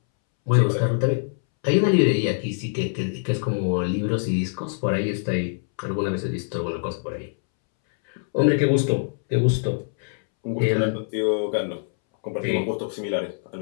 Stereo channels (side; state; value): right; silent; 63 dB below the other